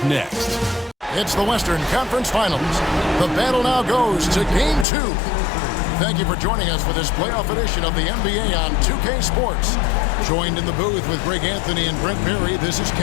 next. It's the Western Conference Finals. The battle now goes to Game 2. Thank you for joining us for this playoff edition of the NBA on 2K Sports. Joined in the booth with Greg Anthony and Brent Berry, this is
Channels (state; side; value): drops out; right; at 4.9 s